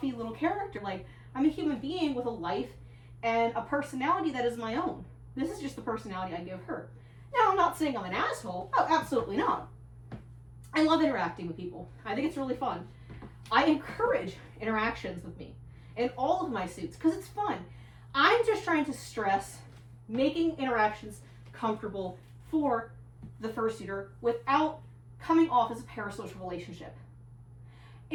little character. Like, I'm a human being with a life and a personality that is my own. This is just the personality I give her. Now, I'm not saying I'm an asshole. Oh, absolutely not. I love interacting with people. I think it's really fun. I encourage interactions with me in all of my suits because it's fun. I'm just trying to stress making interactions comfortable for the fursuiter without coming off as a parasocial relationship.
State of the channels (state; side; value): identical; both; correlation 1.00